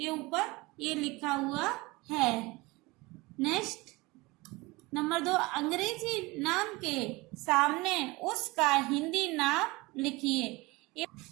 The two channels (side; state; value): left; quieter; 22.9 dB